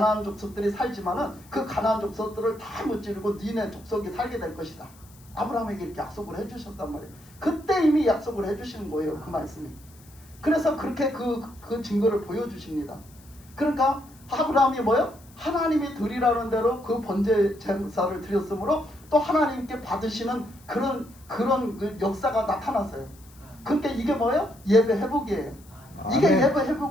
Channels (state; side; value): noise; left; hiss, 26 dB below the sound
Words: 족속들이 살지만은 그 가나안 족속들을 다 무찌르고 니네 족속이 살게 될 것이다. 아브라함에게 이렇게 약속을 해주셨단 말이에요. 그때 이미 약속을 해주시는 거예요. 그 말씀이. 그래서 그렇게 그 증거를 보여주십니다. 그러니까 아브라함이 뭐요? 하나님이 드리라는 대로 그 번제 제사를 드렸으므로 또 하나님께 받으시는 그런 그 역사가 나타났어요. 그러니까 이게 뭐예요? 예배 회복이에요. 이게 아멘. 예배